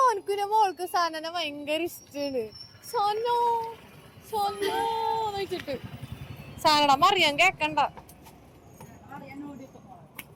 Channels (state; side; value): identical; both; correlation 1.00